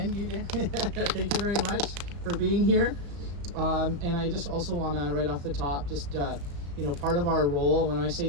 Thank you very much for being here. And I just also want to, right off the top, just part of our role. When I say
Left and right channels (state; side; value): late; left; 35 ms